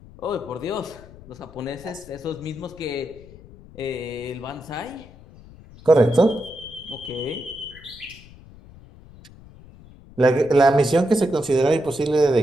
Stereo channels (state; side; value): noise; left; rumble, 21 dB below the sound